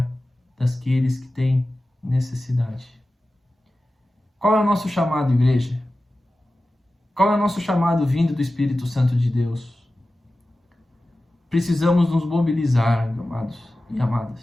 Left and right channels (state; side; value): normal; both; correlation 0.95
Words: daqueles que têm necessidade. Qual é o nosso chamado, igreja? Qual é o nosso chamado vindo do Espírito Santo de Deus? Precisamos nos mobilizar, amados e